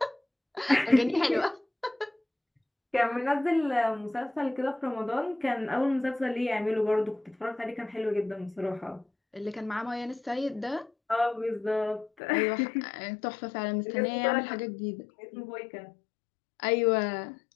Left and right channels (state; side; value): drops out; right; at 12.1 s